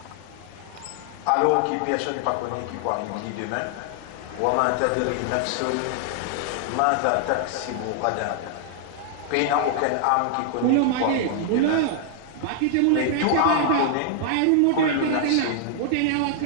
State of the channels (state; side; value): different; both; correlation 0.00